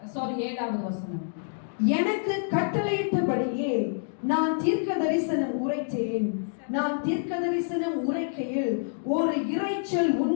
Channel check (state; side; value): silent; right; digital silence